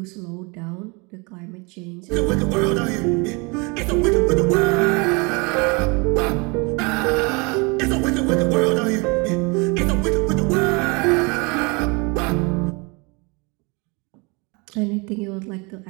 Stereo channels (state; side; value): quieter; left; 29.1 dB